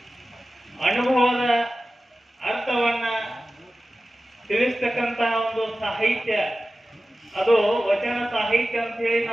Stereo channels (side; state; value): both; normal; correlation 0.95